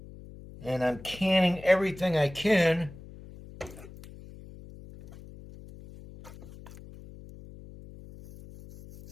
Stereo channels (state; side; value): noise; left; hum, 17 dB below the sound